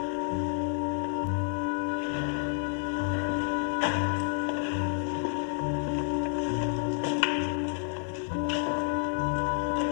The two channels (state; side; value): silent; right; 58 dB below the other